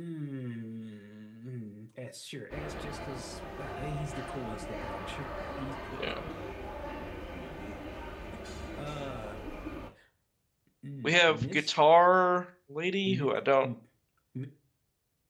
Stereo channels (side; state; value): both; identical; correlation 1.00